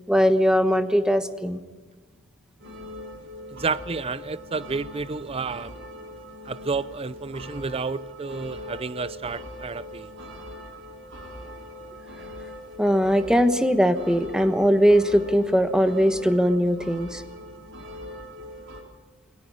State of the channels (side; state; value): both; normal; correlation 0.84